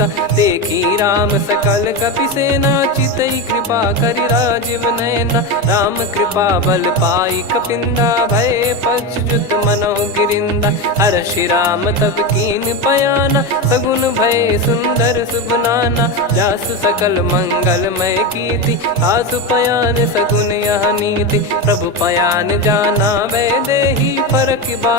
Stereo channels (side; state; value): both; normal; correlation 0.16